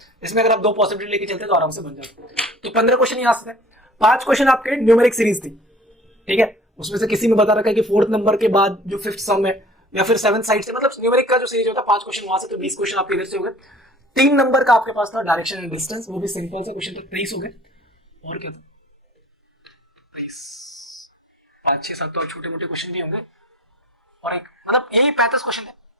इसमें अगर आप 2 पॉसिबिलिटी लेके चलते तो आराम से बन जाते। तो 15 क्वेश्चन यहाँ से थे। 5 क्वेश्चन आपके न्यूमेरिक सीरीज थी। ठीक है, उसमें से किसी में बता रखा है कि 4th नंबर के बाद जो 5th सम है या फिर 7th साइड से, मतलब न्यूमेरिक का जो सीरीज होता है 5 क्वेश्चन वहां से, तो 20 क्वेश्चन आपके इधर से हो गए। 3 नंबर का आपके पास था डायरेक्शन एंड डिस्टेंस, वो भी सिंपल सा क्वेश्चन था, 23 हो गए। और क्या था, 5-6-7 तो छोटे मोटे क्वेश्चन भी होंगे, और एक मतलब यही 35 क्वेश्चन थे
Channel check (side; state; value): both; normal; correlation 0.47